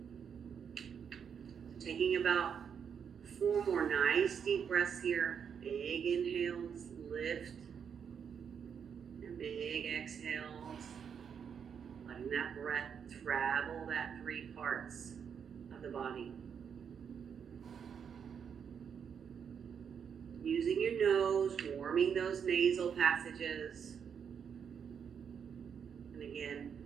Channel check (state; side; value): quieter; left; 7.3 dB